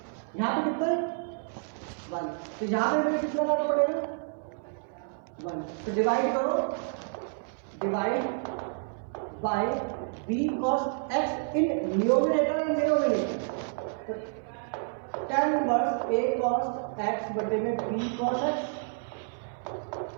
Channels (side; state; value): left; silent; 58 dB below the other